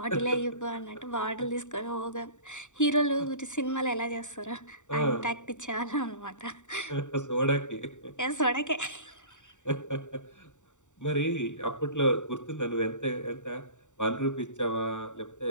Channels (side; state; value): right; late; 0.85 ms